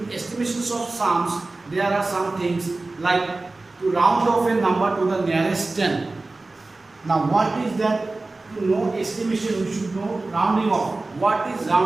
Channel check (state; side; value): quieter; left; 3.3 dB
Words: estimations of sums, there are some things like to round off a number to the nearest 10. Now what is that? To know estimation, we should know rounding off. What is